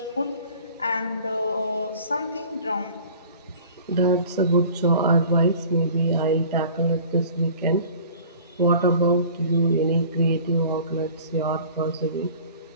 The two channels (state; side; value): inverted; both; correlation -0.46